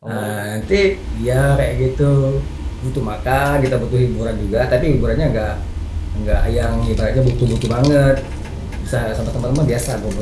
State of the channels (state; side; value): identical; both; correlation 1.00